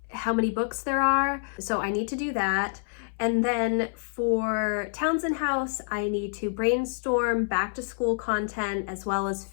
how many books there are. So I need to do that. And then for Townsend House, I need to brainstorm back to school content as well as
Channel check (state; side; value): silent; right; 60 dB below the other